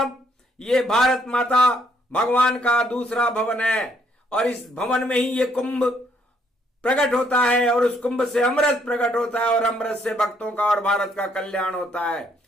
ये भारत माता भगवान का दूसरा भवन है और इस भवन में ही ये कुंभ प्रकट होता है और उस कुंभ से अमृत प्रकट होता है और अमृत से भक्तों का और भारत का कल्याण होता है।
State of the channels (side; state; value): both; normal; correlation 0.69